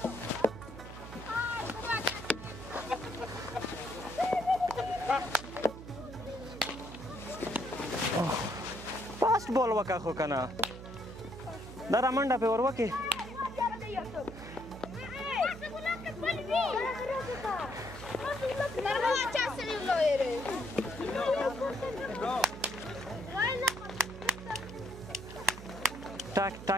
فاست بال وکه خو کنه دا را منډه پې ور وکې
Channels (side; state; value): right; noise; hum, 13 dB below the sound